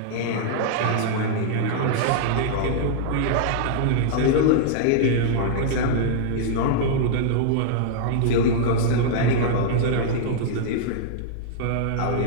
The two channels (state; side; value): different; both; correlation -0.02